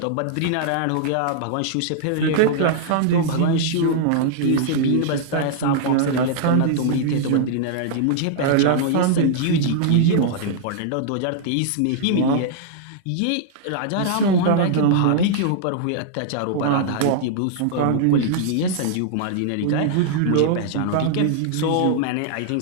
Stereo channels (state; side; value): different; both; correlation -0.01